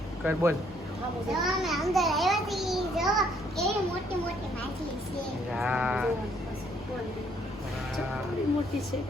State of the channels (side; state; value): both; normal; correlation 0.67